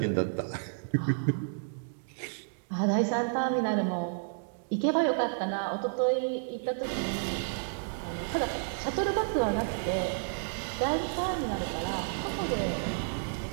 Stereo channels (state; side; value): silent; left; digital silence